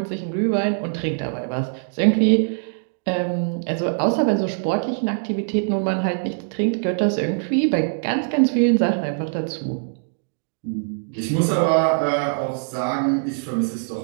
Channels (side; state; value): left; silent; digital silence